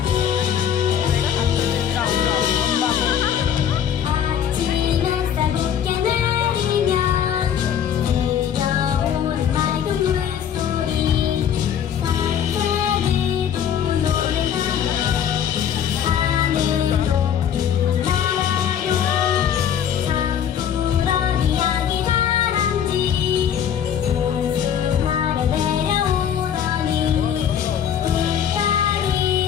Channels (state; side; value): quieter; right; 9.0 dB